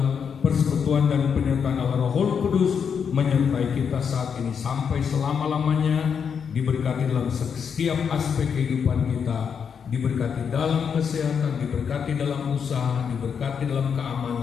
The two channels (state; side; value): quieter; right; 6.9 dB